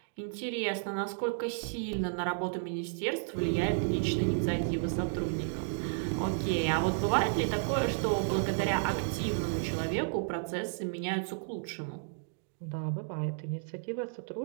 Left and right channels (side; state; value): left; silent; digital silence